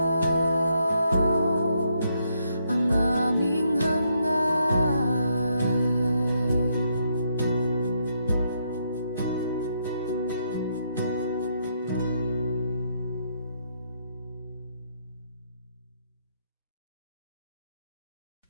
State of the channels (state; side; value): inverted; both; correlation -0.76